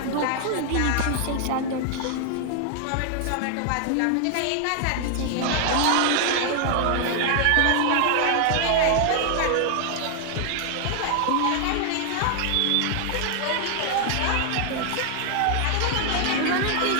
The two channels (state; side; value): different; both; correlation 0.00